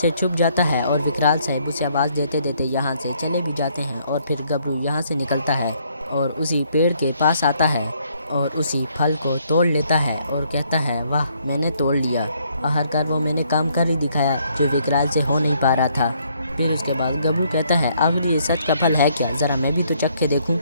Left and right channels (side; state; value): both; inverted; correlation -0.68